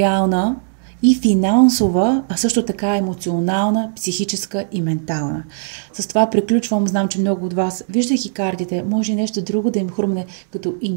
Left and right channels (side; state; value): left; silent; 67 dB below the other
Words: и финансова, а също така емоционална, психическа и ментална. С това приключвам. Знам, че много от вас, виждайки картите, може и нещо друго да им хрумне като